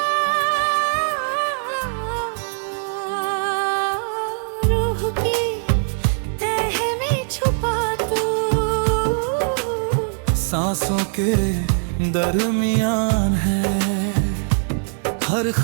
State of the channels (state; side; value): silent; left; 65 dB below the other